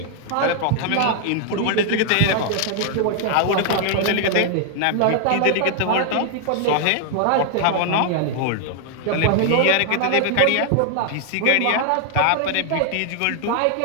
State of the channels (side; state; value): both; different; correlation 0.00